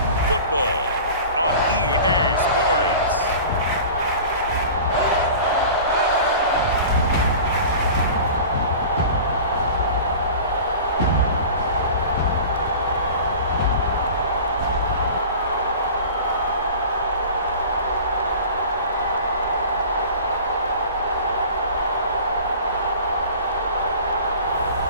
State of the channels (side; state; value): both; inverted; correlation -0.39